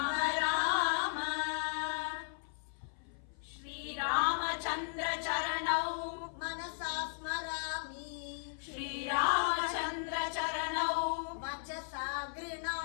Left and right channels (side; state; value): right; silent; 54 dB below the other